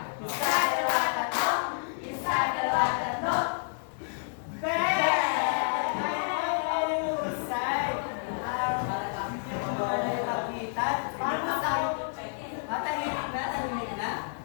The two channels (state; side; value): silent; right; digital silence